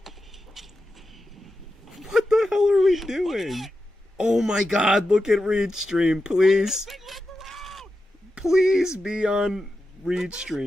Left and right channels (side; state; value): both; normal; correlation 0.90